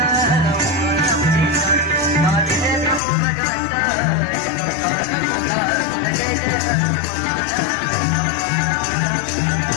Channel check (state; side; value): drops out; right; at 3.0 s